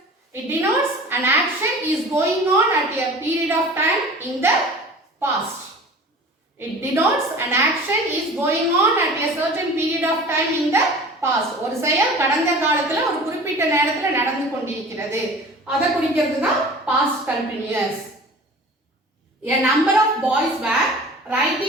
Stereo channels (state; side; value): normal; both; correlation 0.41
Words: it denotes an action is going on at a period of time in the past. It denotes an action is going on at a certain period of time in the past. ஒரு செயல் கடந்த காலத்துல ஒரு குறிப்பிட்ட நேரத்துல நடந்து கொண்டிருக்கிறது. அத குறிக்கிறது தான் past continuous. A number of boys were